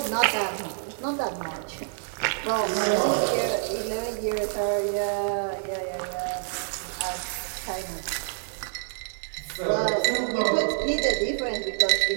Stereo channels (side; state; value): left; silent; 60 dB below the other